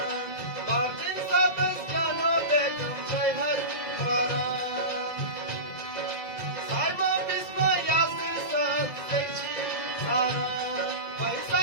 Martin Sabes, Jano Beckham, say hi, Simon Bisma, Yasir Sab, Sechi, Sara, by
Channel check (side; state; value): right; late; 2.1 ms